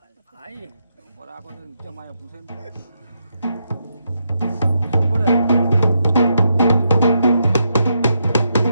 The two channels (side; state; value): both; inverted; correlation -0.81